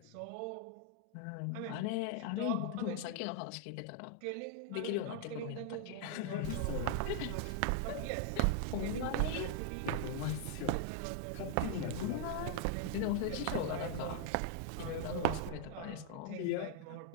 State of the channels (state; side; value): different; both; correlation 0.00